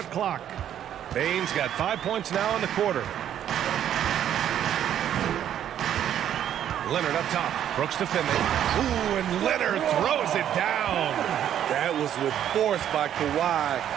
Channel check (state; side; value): quieter; left; 10.3 dB